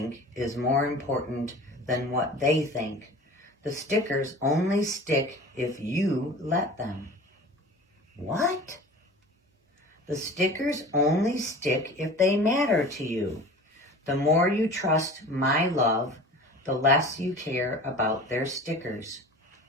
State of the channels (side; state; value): both; normal; correlation 0.39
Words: is more important than what they think. The stickers only stick if you let them. What? The stickers only stick if they matter to you. The more you trust my love, the less you care about their stickers.